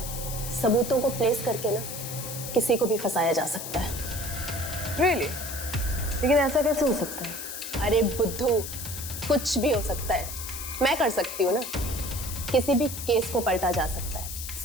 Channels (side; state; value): left; noise; hiss, 8 dB below the sound